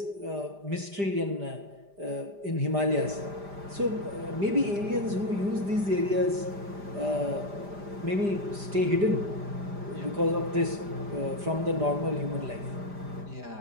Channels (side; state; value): left; late; 5.0 ms